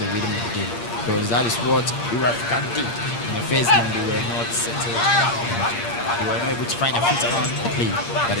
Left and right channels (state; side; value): late; right; 8.6 ms